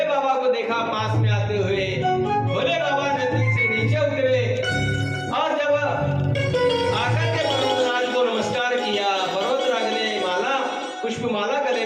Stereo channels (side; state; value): both; identical; correlation 1.00